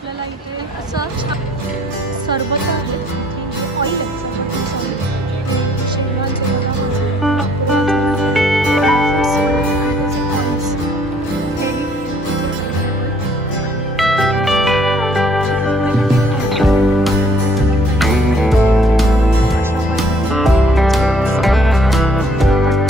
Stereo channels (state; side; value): normal; both; correlation 0.62